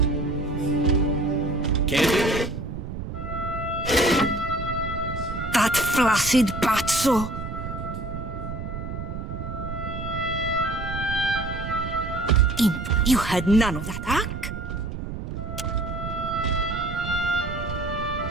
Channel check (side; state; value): right; noise; rumble, 7 dB below the sound